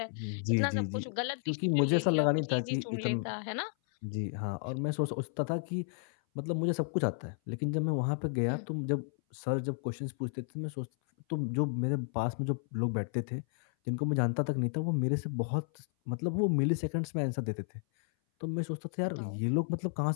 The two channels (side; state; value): right; silent; 56 dB below the other